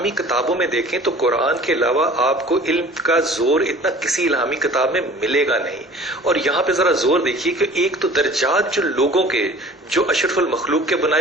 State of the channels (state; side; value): normal; both; correlation 0.46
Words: کتابوں میں دیکھیں تو قرآن کے علاوہ آپ کو علم کا زور اتنا کسی الہامی کتاب میں ملے گا نہیں. اور یہاں پہ ذرا زور دیکھیے کہ ایک تو درجات جو لوگوں کے، جو اشرف المخلوق کے